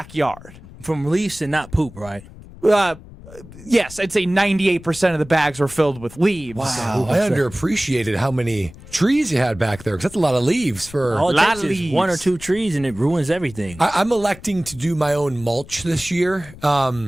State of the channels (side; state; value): left; noise; rumble, 18 dB below the sound